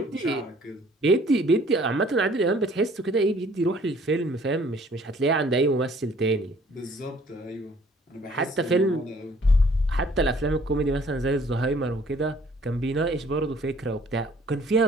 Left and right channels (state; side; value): normal; both; correlation 0.57